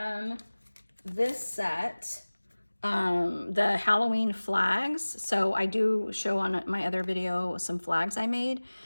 this set, the Halloween flags. So I do show on my other video some flags I made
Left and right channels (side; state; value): both; inverted; correlation -1.00